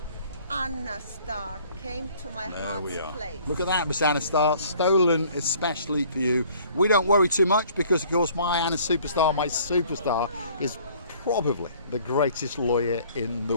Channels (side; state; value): both; inverted; correlation -0.55